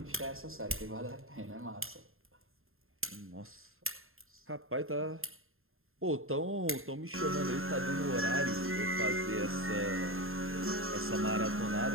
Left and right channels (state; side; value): late; left; 0.61 ms